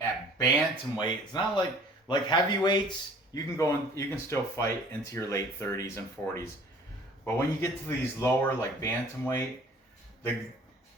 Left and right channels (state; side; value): normal; both; correlation 0.51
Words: bantamweight, it's not like heavyweights, you can still fight into your late 30s and 40s, but when you get to these lower, like bantamweight, the